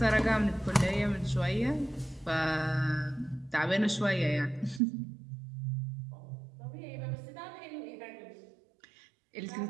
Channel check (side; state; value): left; drops out; at 4.8 s